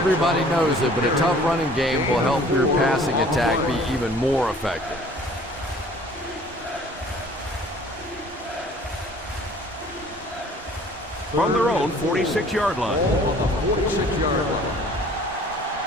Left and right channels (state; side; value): normal; both; correlation 0.52